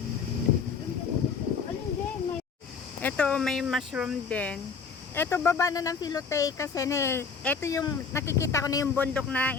Ito, may mushroom din. Ito, baba na ng Filote kasi ito yung nakikita ko na yung bundok na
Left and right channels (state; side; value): quieter; right; 5.5 dB